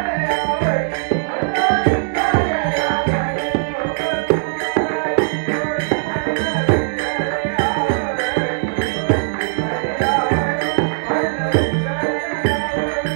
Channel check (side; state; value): left; silent; 66 dB below the other